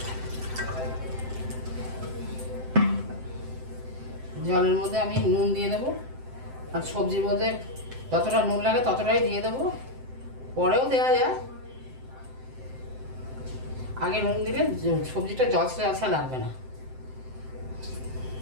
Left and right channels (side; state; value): left; late; 7.7 ms